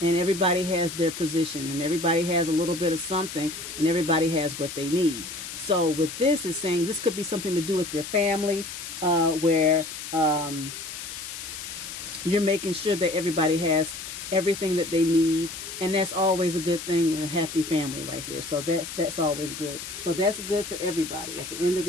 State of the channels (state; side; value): noise; left; hiss, 9 dB below the sound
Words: and everybody has their position, and everybody has a little bit of something, and everybody has what they need. So with this, is saying this could be something to do with your family, where you're making sure that everybody has everything that they need, and that's always a good thing with a happy family right here. So that's always good. So that's good for everybody. At the end of